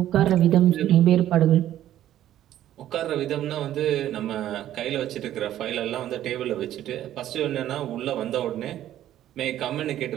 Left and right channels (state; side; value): quieter; left; 12.4 dB